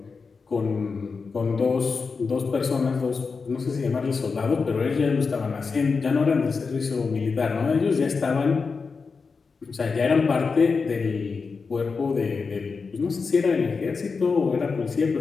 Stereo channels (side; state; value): right; quieter; 4.8 dB